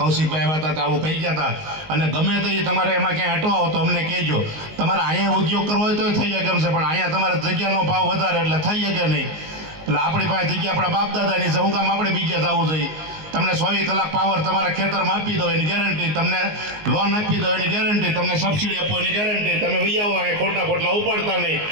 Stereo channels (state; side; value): late; left; 19 ms